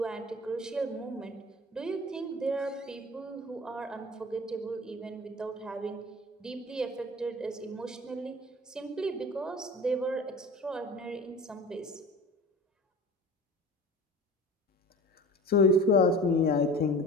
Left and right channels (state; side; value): normal; both; correlation 0.38